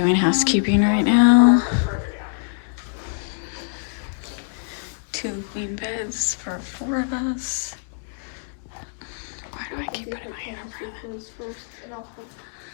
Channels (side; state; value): right; silent; 63 dB below the other